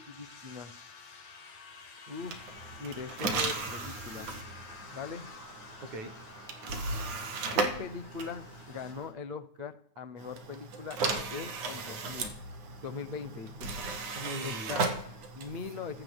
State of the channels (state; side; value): late; left; 9.2 ms